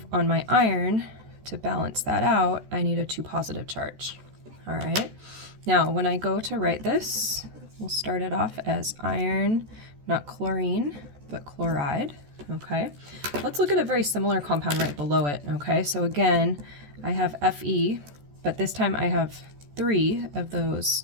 on my iron, to balance that out, I need a 2 positive charge. All right, now when I go to write this, we'll start it off as iron not chlorine, but chloride. Okay, let's look at a very similar compound right below it. Okay, so again, I have Fe, but this time I have 3 of those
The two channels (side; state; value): left; late; 14 ms